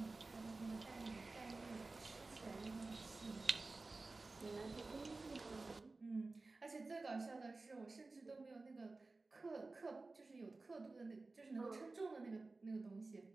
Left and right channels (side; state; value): left; quieter; 3.5 dB